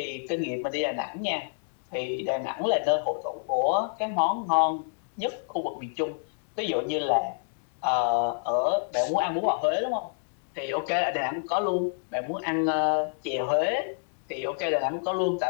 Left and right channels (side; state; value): right; silent; digital silence